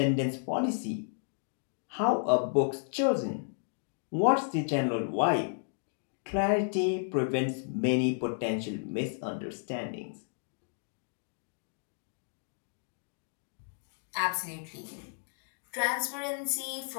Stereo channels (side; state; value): right; silent; digital silence